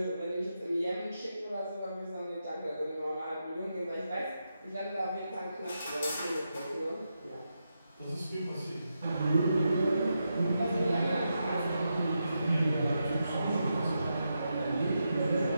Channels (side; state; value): both; inverted; correlation -0.86